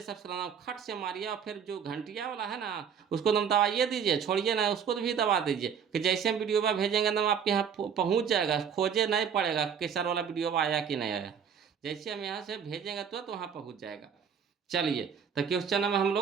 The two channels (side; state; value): left; quieter; 7.4 dB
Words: सब्सक्राइब खट से मारिए और फिर जो घंटिया वाला है ना उसको दम दबाइए दीजिए, छोड़िए ना उसको भी दबा दीजिए कि जैसे हम वीडियो में भेजेंगे दम आपके यहाँ पहुँच जाएगा, खोजे नहीं पड़ेगा कि सर वाला वीडियो आया कि नहीं आया। जैसे हम यहाँ से भेजेंगे तो वहाँ पहुँच जाएगा। चलिए तो क्वेश्चन नंबर हम